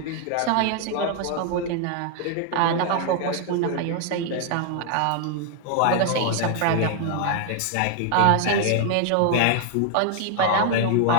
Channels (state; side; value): different; both; correlation 0.00